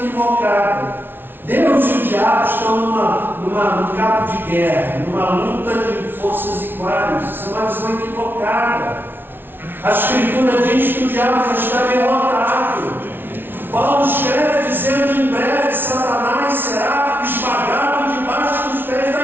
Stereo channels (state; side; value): late; left; 0.10 ms